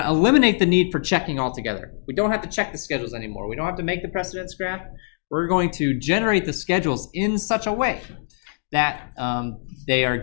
to eliminate the need for checking altogether. We don't have to check the schedules anymore. We don't have to make the precedence graph. We're going to generate the schedules in such a way that they are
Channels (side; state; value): right; silent; digital silence